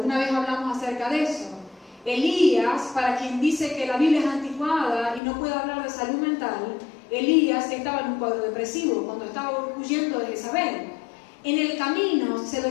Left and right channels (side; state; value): right; drops out; at 5.2 s